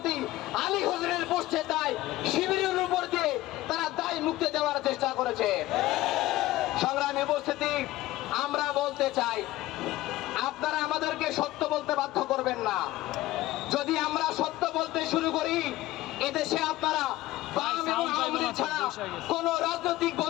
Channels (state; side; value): quieter; right; 16.9 dB